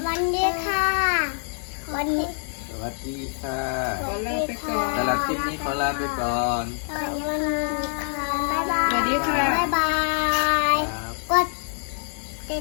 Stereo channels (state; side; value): silent; right; 62 dB below the other